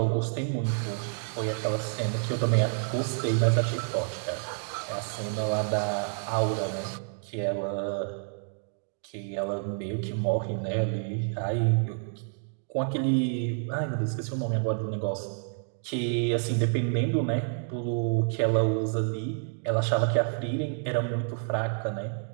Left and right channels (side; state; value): left; silent; 59 dB below the other